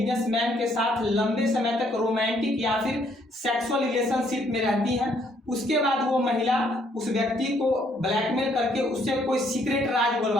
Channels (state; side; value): normal; both; correlation 0.68